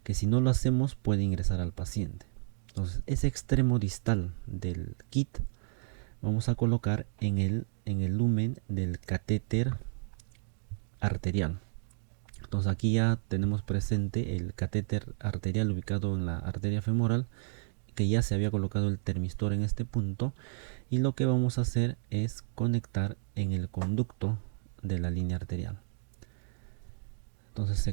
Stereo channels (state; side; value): silent; left; digital silence